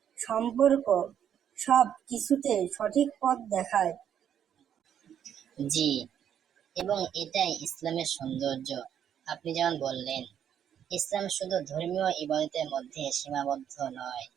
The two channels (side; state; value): left; quieter; 9.2 dB